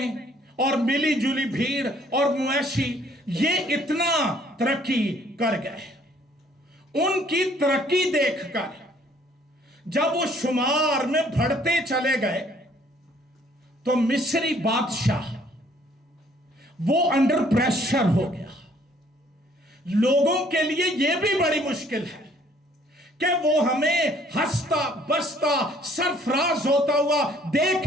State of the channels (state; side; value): normal; both; correlation 0.61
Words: और मिली जुली भीड़ और मवेशी, ये इतना तरक्की कर गए। उनकी तरक्की देखकर जब वो शुमार में बढ़ते चले गए तो मिस्री बादशाह वो अंडर प्रेशर हो गया। लोगों के लिए यह भी बड़ी मुश्किल है कि वो हमें हंसता बसता सरफराज होता हुआ देख